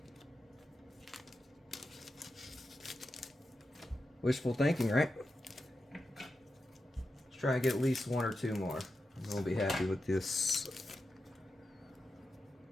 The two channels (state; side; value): normal; both; correlation 0.90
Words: Wishful thinking, right? Let's try and get at least one or two more. And we'll be happy with this.